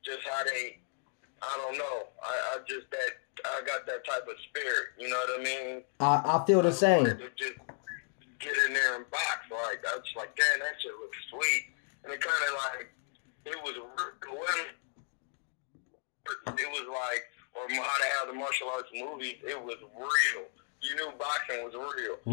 Just how I don't know. I got that type of spirit. You know what I mean? I feel the same. To just get in there and box. Like I was like, damn, that shit looks sweet, and it kind of like it was like, or how they have the martial arts movies. It was real. You knew boxing was real.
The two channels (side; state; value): right; silent; 55 dB below the other